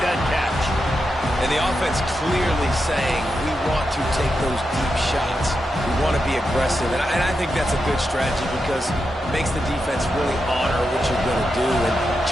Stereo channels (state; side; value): normal; both; correlation 0.87